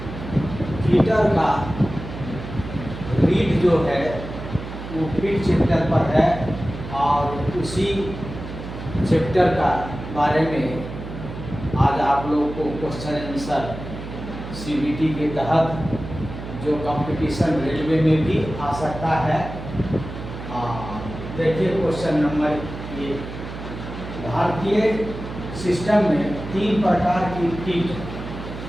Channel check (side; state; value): right; noise; hum, 10 dB below the sound